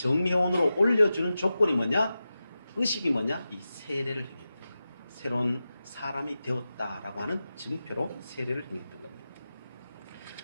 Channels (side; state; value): both; inverted; correlation -0.93